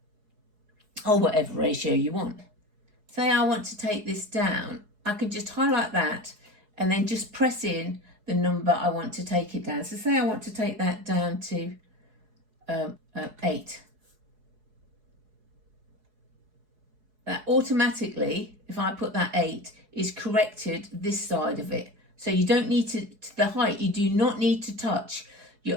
Or whatever ratio you want. Say I want to take this down, I can just highlight that and then just press in the number I want to take it down. So say I want to take that down to 8. That automatically, if I put that 8, is corrected this side of it. So you don't need to the height, you do not need to touch.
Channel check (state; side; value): late; left; 4.7 ms